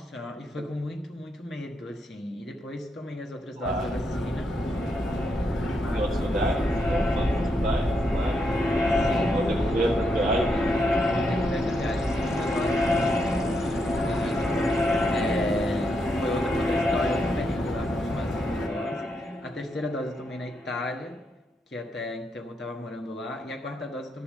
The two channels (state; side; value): normal; both; correlation 0.81